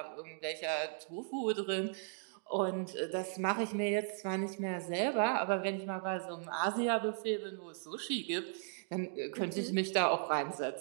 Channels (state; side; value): silent; left; digital silence